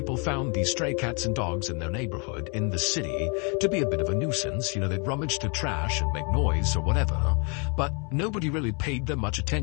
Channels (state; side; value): quieter; right; 35.2 dB